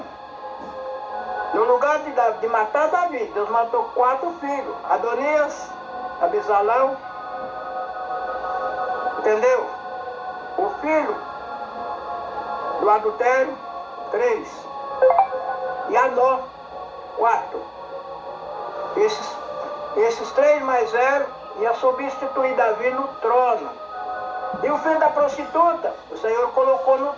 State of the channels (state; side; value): identical; both; correlation 1.00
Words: No lugar de matar Davi, Deus matou 4 filhos. Adonias, Abisalão. Entendeu? O filho do adultério, 3. E Anó, 4. Esses 3 mais 0 iam substituir Davi no trono. E o filho da prostituta, o Senhor colocou no